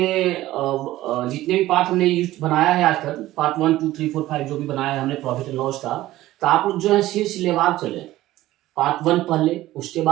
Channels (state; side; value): quieter; left; 15.8 dB